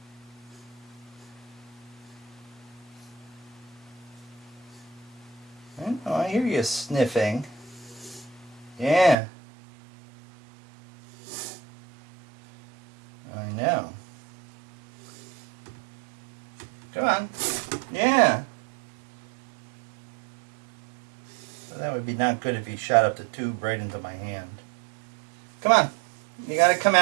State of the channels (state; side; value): drops out; left; at 9.2 s